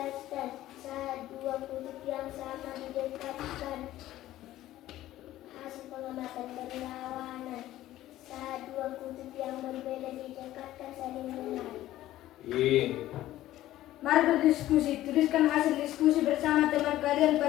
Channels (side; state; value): right; quieter; 14.6 dB